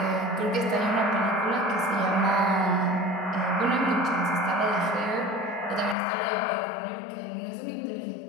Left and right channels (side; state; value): right; drops out; at 6.0 s